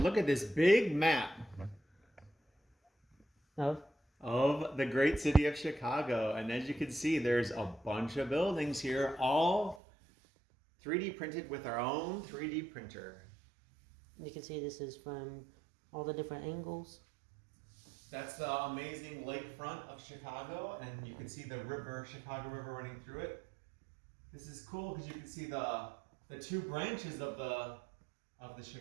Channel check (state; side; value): drops out; left; at 9.8 s